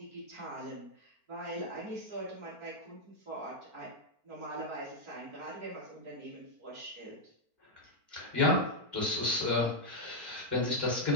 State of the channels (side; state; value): left; late; 4.4 ms